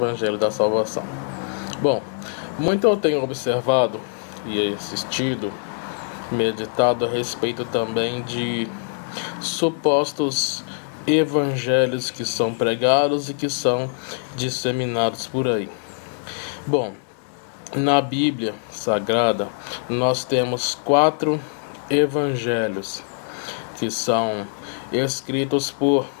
da Salvação. Bom, muito eu tenho observado e assistido, meditado a respeito também de supostos evangelhos que são pregados e que são disseminados por aí. Bom, na Bíblia Sagrada nós temos 4 evangelhos que são escritos por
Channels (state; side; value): silent; right; digital silence